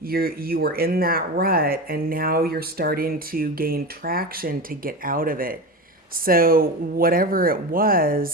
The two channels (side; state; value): both; normal; correlation 0.24